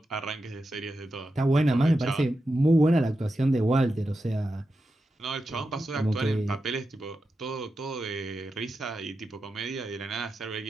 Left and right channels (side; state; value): both; normal; correlation 0.89